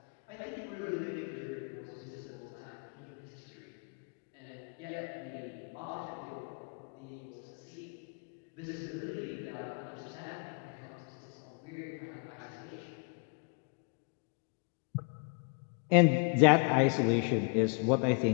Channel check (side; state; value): right; quieter; 38.4 dB